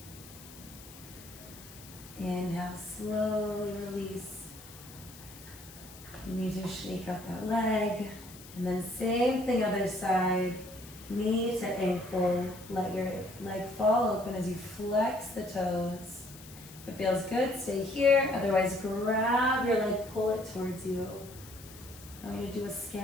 Inhale, slowly release. You need to shake out that leg. And then same thing, other side. Knee to ankle. Let your leg fall open as you flex the toes. If it feels good, stay here. Otherwise, grab your leg, pull it towards you. I want you to do a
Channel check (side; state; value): left; noise; hiss, 18 dB below the sound